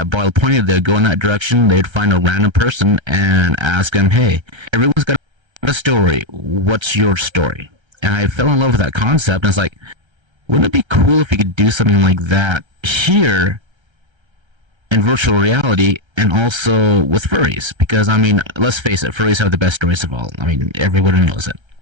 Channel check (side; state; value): left; late; 1.3 ms